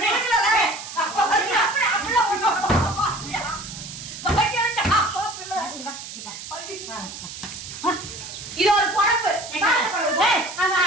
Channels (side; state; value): right; noise; hiss, 11 dB below the sound